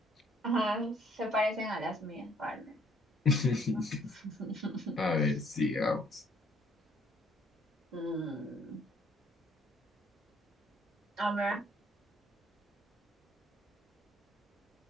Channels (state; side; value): normal; both; correlation 0.63